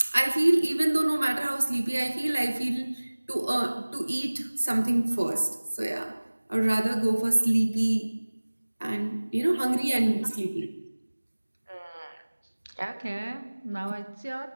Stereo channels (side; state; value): both; inverted; correlation -1.00